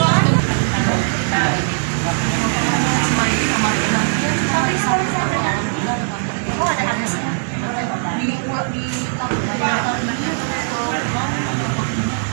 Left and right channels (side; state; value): left; silent; digital silence